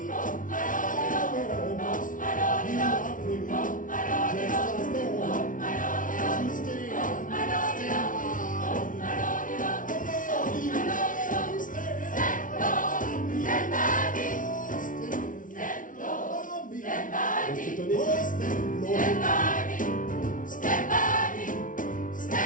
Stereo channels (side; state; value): right; late; 0.38 ms